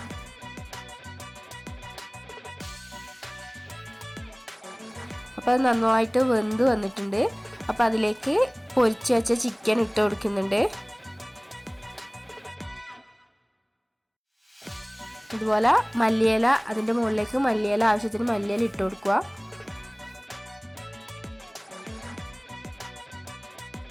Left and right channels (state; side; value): identical; both; correlation 1.00